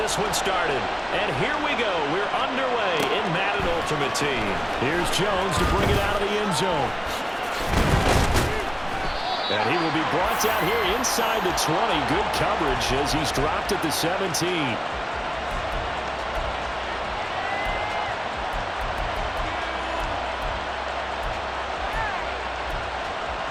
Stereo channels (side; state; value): both; identical; correlation 1.00